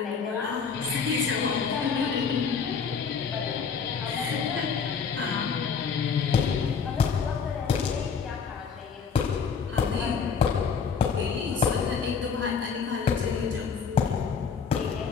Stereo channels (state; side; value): quieter; right; 6.0 dB